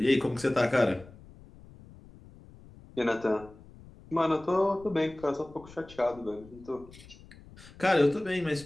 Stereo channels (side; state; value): left; noise; rumble, 21 dB below the sound